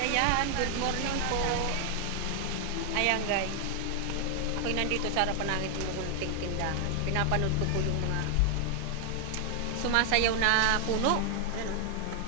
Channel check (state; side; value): different; both; correlation 0.00